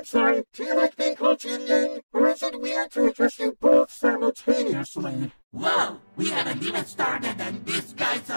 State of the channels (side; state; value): both; inverted; correlation -1.00